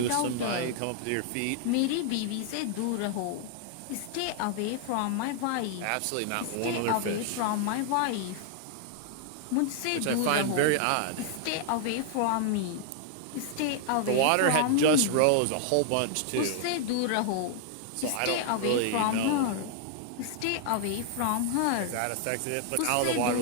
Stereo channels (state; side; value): different; both; correlation 0.00